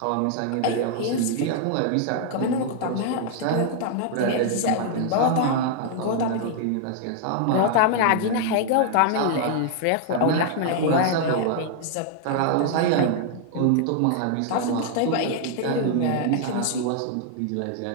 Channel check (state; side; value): different; both; correlation 0.00